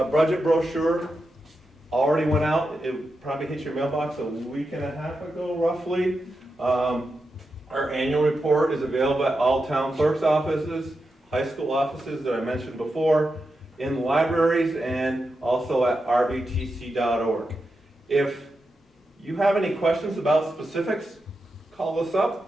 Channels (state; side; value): normal; both; correlation 0.88